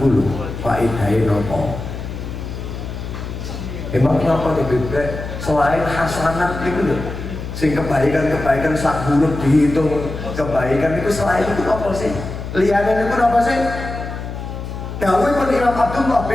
lho faedahe napa? Emang napa bebek selain hasanat niku lho sing kebaikan-kebaikan sak huruf dihitung kebaikan niku selain itu apa sih? Liyane niku napa sih? Dawuhipun Imam Abdullah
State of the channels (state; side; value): noise; left; hum, 8 dB below the sound